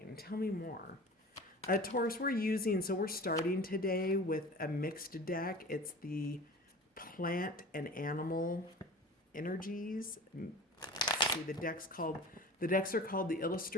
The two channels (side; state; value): both; normal; correlation 0.38